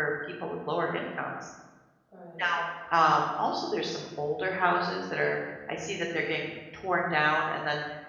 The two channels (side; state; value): both; identical; correlation 1.00